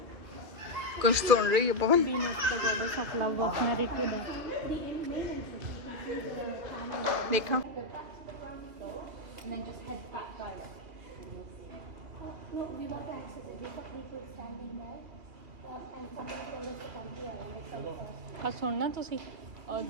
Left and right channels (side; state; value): left; late; 2.5 ms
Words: ਕੁਝ ਸੁਣ ਰਹੀ ਹੈ ਪਵਨ? ਬੀਨ ਆਫ ਦਾ ਗੋਡਸ ਆਫ ਲਵ ਆਫ ਨਰੇਟਰ ਦਾ ਦੇਖਾਂ। And then just head back direct. No, we want to access it. We've got people standing there. And somebody told us to come here. ਆ ਸੁਣਨਾ ਤੁਸੀਂ,